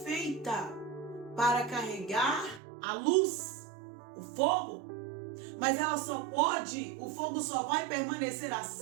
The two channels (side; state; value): left; drops out; at 2.6 s